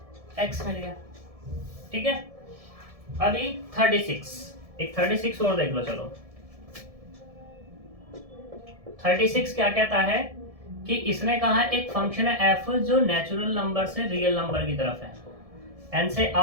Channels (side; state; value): left; late; 1.7 ms